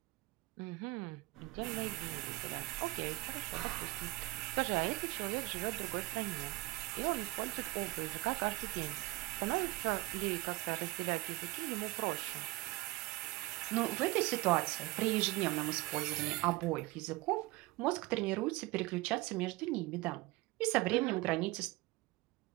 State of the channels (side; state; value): left; quieter; 20.6 dB